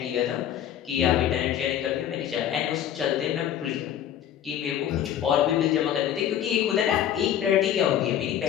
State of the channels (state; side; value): quieter; right; 10.4 dB